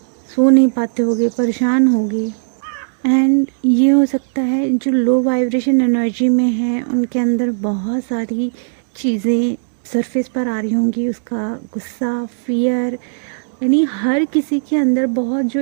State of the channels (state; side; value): silent; left; digital silence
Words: सो नहीं पाते होगे, परेशान होगे एंड ये हो सकता है जो लो वाइब्रेशन एनर्जी में है उनके अंदर बहुत सारी चीज़ें सरफेस पर आ रही होंगी। उसका गुस्सा, फियर, यानी हर किसी के अंदर बहुत जो